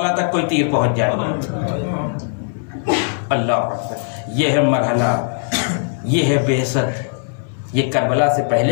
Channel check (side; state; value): right; silent; 66 dB below the other